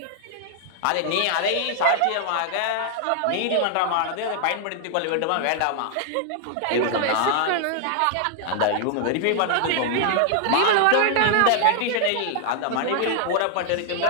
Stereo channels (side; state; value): both; different; correlation 0.00